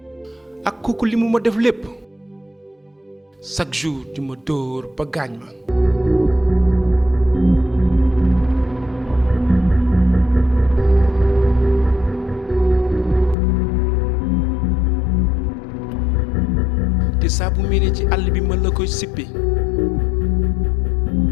ak kooku li mu ma def lépp chaque jour di ma dóor ba gaañ ma. te saa bu mel ci àll bi mën la koy sippi.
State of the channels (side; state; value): right; drops out; at 13.4 s